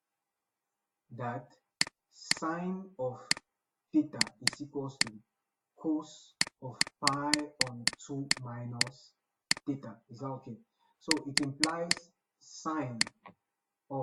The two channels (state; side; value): identical; both; correlation 1.00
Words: that sine of theta is equals to cos of pi on 2 minus theta. Is that okay? So it implies sine